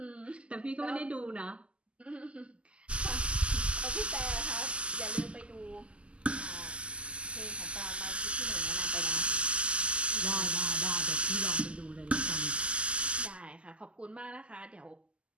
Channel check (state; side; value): late; left; 0.055 ms